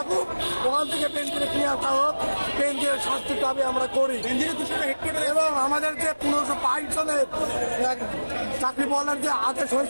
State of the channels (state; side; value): inverted; both; correlation -1.00